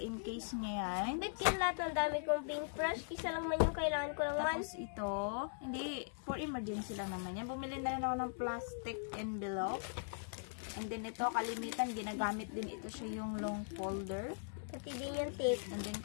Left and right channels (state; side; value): silent; right; digital silence